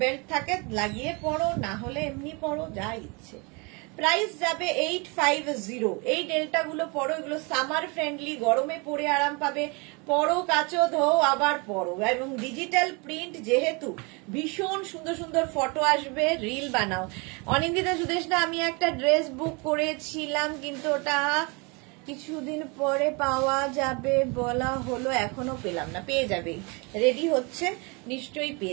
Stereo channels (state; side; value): quieter; left; 30.1 dB